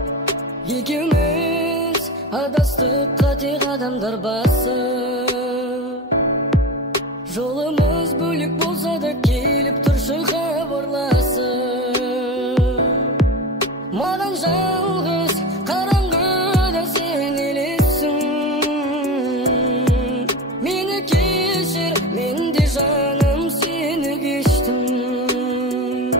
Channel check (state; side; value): normal; both; correlation 0.27